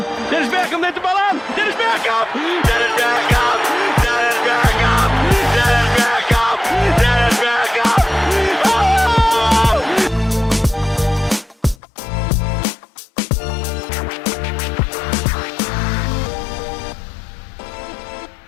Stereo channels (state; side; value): drops out; right; at 11.8 s